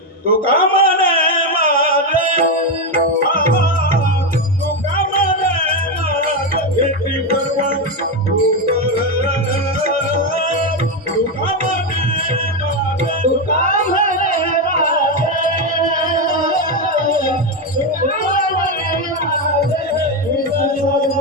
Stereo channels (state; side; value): normal; both; correlation 0.09